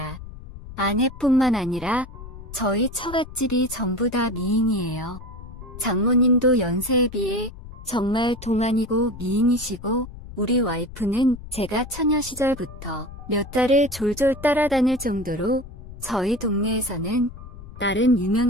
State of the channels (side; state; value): left; noise; rumble, 14 dB below the sound